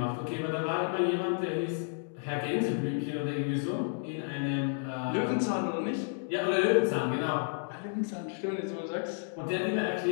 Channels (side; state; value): right; silent; digital silence